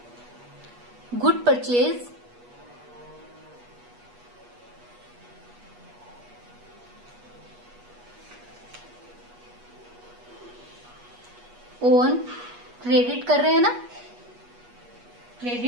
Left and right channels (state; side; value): late; left; 8.3 ms